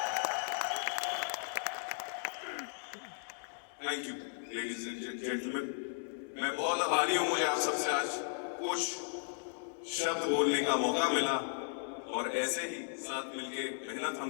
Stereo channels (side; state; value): right; silent; digital silence